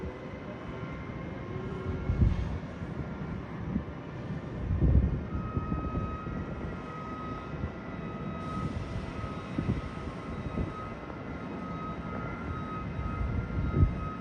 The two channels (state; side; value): identical; both; correlation 1.00